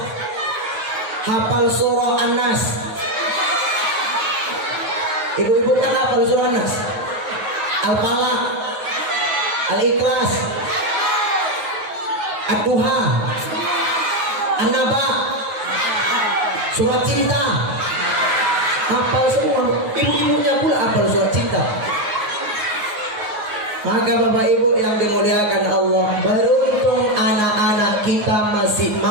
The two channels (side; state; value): left; late; 9.5 ms